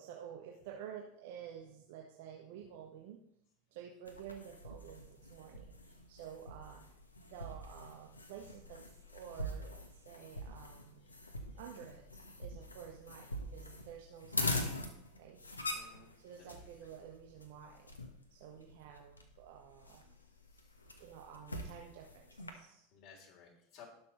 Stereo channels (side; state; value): both; inverted; correlation -0.43